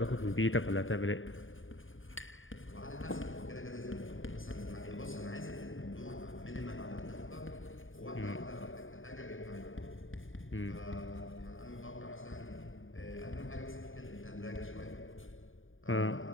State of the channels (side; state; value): right; late; 0.58 ms